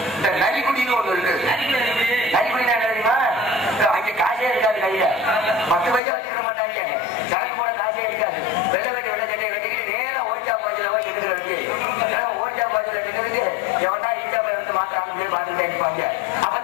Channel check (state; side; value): drops out; right; at 6.0 s